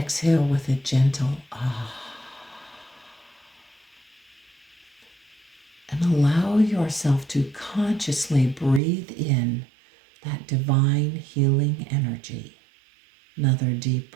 with a gentle ah. And allow yourself to consciously breathe in that divine healing energy. Another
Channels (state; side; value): drops out; left; at 8.8 s